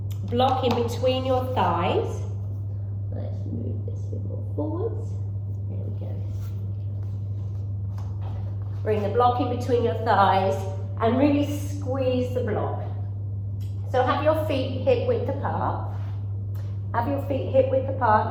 block in between your thighs. Let's move this a bit more forwards. There we go. Bring the block in between your thighs and really squeeze the block. So have your feet hip width apart. Have your feet hip width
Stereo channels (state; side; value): identical; both; correlation 1.00